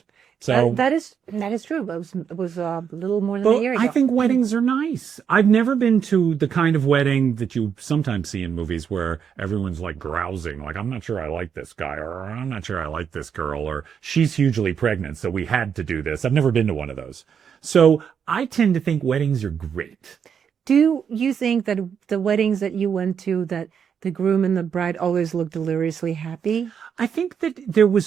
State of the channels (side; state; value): left; quieter; 7.4 dB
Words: So that is true. It was a little more than a year ago. I think weddings are nice. I've never been to the kind of wedding that you sometimes see in movies where everyone's like grousing, like, I'm not sure I like this guy, or I'm not sure I like this girl, or she's hugely pregnant, so we had to do this. I've never been to one of those. So I tend to think weddings are great. Do you think that the weddings that you went to, that the groom and the bride always looked deliriously happy? I think that there